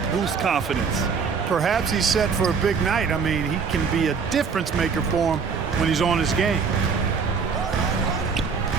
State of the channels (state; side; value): quieter; left; 5.7 dB